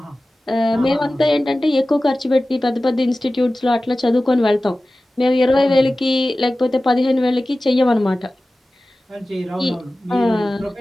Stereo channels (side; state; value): both; normal; correlation 0.96